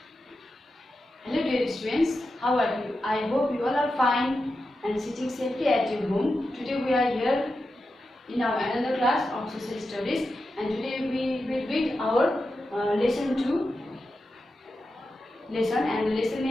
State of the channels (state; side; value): normal; both; correlation 0.90